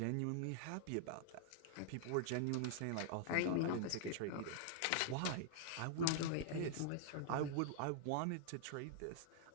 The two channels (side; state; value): both; different; correlation -0.01